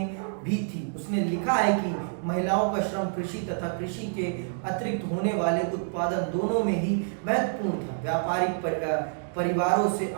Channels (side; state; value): left; silent; digital silence